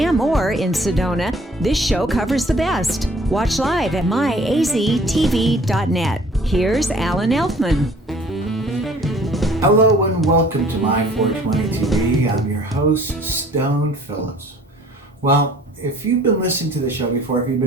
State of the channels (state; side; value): normal; both; correlation 0.54